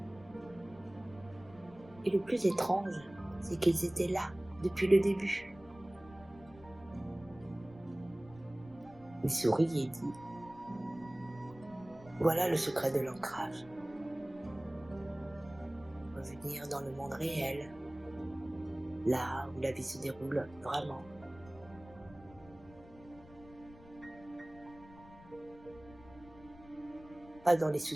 Et le plus étrange, c'est qu'ils étaient là depuis le début. Il sourit et dit: voilà le secret de l'ancrage. Revenir dans le monde réel, là où la vie se déroule vraiment. Pas dans les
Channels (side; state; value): left; noise; rumble, 21 dB below the sound